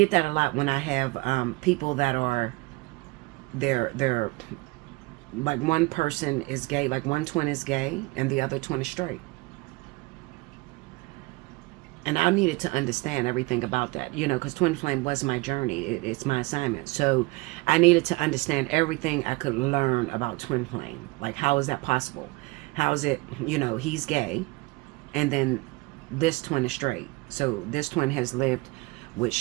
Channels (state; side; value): quieter; left; 24.2 dB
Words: that a lot when I have people that are, they're like, one person is gay, like one twin is gay and the other twin is straight. And I needed to understand everything about that, you know, because twin flame was my journey. It's my assignment. So I needed to understand everything I could learn about twin flame. Like, how is that possible? How is it, you know, he's gay and then this twin is straight. So this twin has lived with